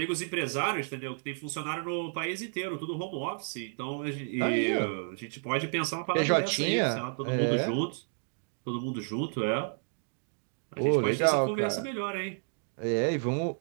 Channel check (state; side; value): silent; left; digital silence